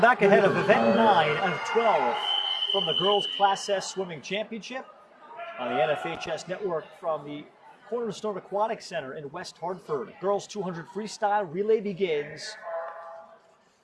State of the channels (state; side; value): identical; both; correlation 1.00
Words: back ahead of event 9 out of 12 from the Girls Class S Swimming Championship on the NFHS Network from the Cornerstone Aquatic Center in West Hartford. Girls 200 freestyle relay begins.